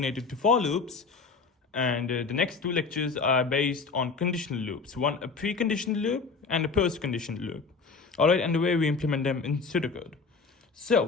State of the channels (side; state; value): right; quieter; 4.7 dB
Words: to for loops, and the next two lectures are based on conditional loops. One a preconditional loop and a post-conditional loop. Alright, and the way we implement them in pseudocode.